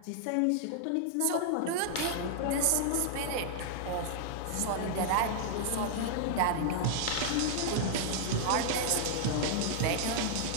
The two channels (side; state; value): both; different; correlation -0.01